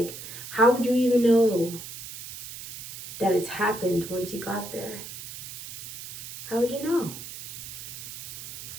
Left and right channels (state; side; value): noise; right; hiss, 11 dB below the sound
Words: how would you even know that it's happened once you got there? How would you know?